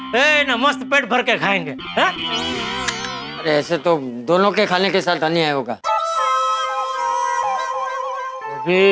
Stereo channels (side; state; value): both; identical; correlation 1.00